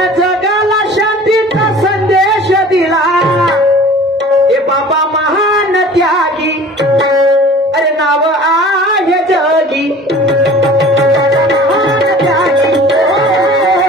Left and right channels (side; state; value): both; normal; correlation 0.44